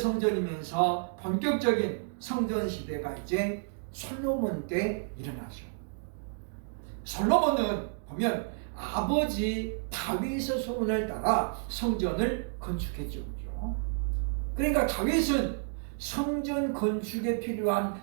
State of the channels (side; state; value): left; silent; digital silence